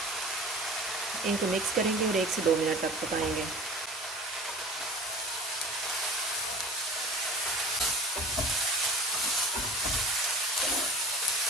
इनको मिक्स करेंगे और 1 से 2 मिनट तक पकाएंगे।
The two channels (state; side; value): normal; both; correlation 0.40